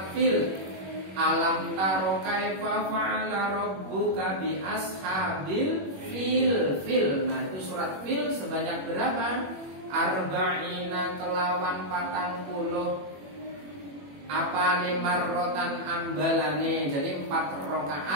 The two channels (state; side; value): late; left; 21 ms